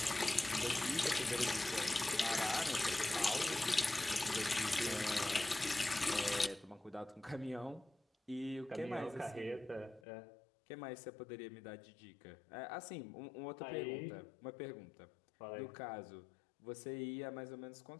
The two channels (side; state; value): right; drops out; at 10.0 s